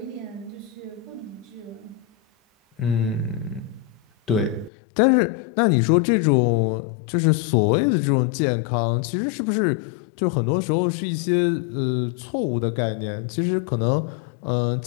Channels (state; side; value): drops out; right; at 4.7 s